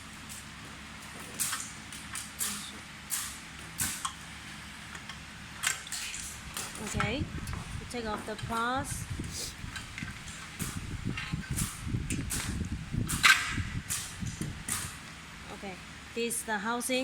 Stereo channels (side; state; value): both; identical; correlation 1.00